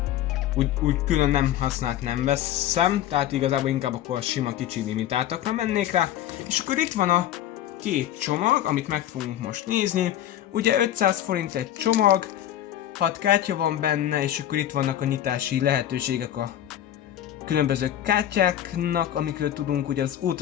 úgy külön nem használt nem veszem, tehát igazából inkább akkor a sima kicsi limitáltakra mennék rá. És akkor itt van a két csomag, amit meg fogunk most nézni. Ugye 500 forint egy csomag, 6 kártya van benne, és akkor itt vannak a nyitási lehetőségek a különböző kártyáknak, amikről tudunk, ugye az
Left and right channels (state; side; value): quieter; right; 11.9 dB